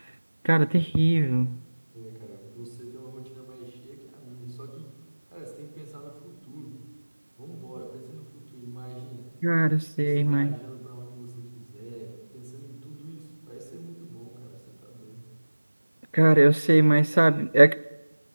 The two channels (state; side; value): inverted; both; correlation -1.00